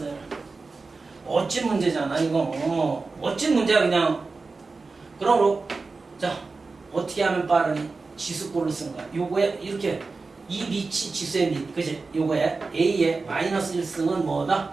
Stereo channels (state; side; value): quieter; left; 4.0 dB